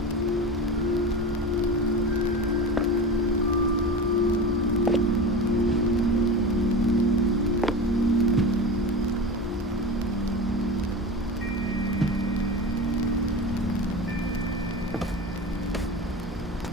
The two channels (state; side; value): normal; both; correlation 0.27